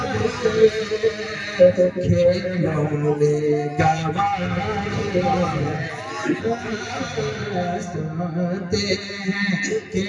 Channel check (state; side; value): identical; both; correlation 1.00